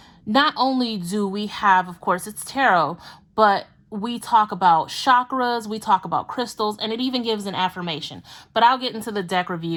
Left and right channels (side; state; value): both; identical; correlation 1.00